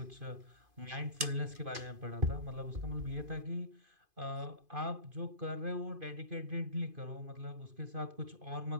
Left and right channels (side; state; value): left; late; 2.5 ms